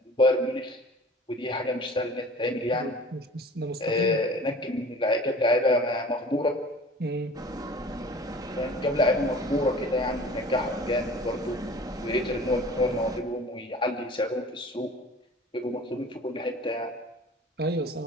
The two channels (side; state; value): both; normal; correlation 0.45